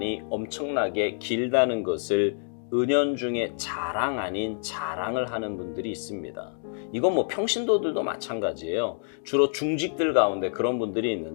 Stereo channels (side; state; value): right; silent; digital silence